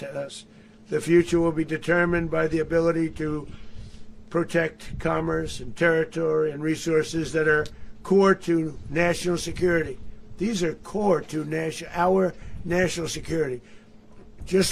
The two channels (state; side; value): identical; both; correlation 1.00